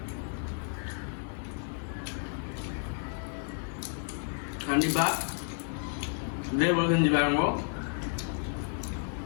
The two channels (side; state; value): right; silent; 57 dB below the other